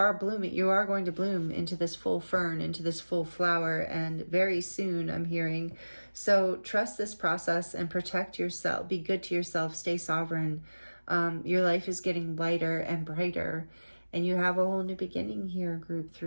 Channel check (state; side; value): inverted; both; correlation -1.00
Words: blooming. You are going to bloom into this full fern, into this full flower, and very soon, I'm hearing. So trust this process and protect yourself. Be good to yourself. Stay sovereign. Your life is getting lighter and brighter, and you have a whole new beginning here, Group